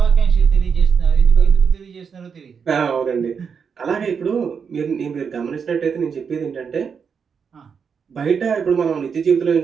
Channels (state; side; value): quieter; left; 6.4 dB